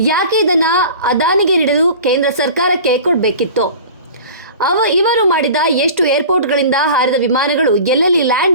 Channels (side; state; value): both; inverted; correlation -0.39